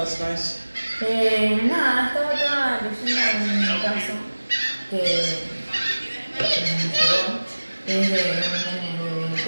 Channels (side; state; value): both; inverted; correlation -1.00